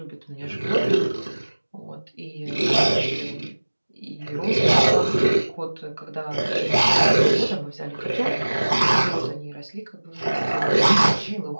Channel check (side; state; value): both; inverted; correlation -1.00